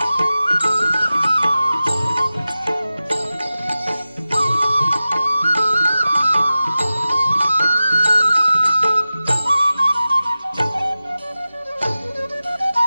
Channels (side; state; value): both; inverted; correlation -0.94